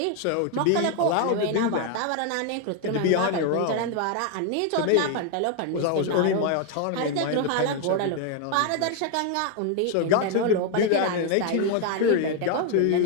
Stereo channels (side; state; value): both; different; correlation 0.01